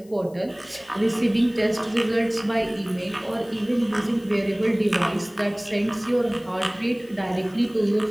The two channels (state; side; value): noise; left; hiss, 28 dB below the sound